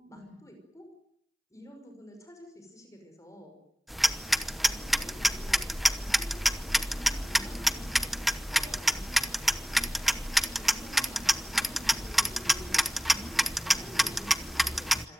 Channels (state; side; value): normal; both; correlation 0.98